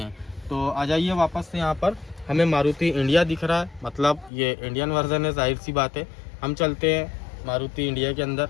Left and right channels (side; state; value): right; drops out; at 4.3 s